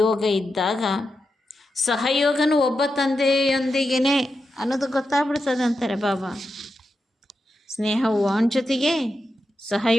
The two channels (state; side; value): normal; both; correlation 0.88